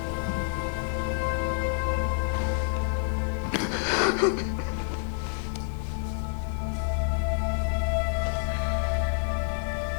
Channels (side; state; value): right; silent; digital silence